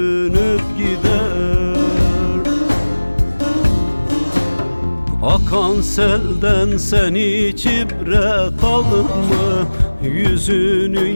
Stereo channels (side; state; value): both; inverted; correlation -1.00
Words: gider. Akan selden sen hiç ibret aldın mı? Yüzünü